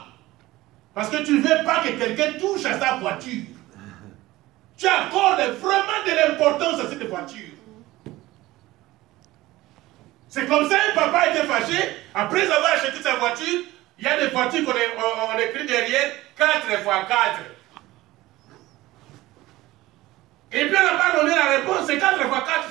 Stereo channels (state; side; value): quieter; left; 17.9 dB